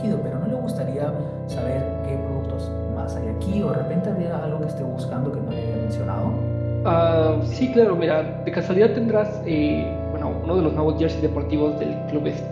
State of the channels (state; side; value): identical; both; correlation 1.00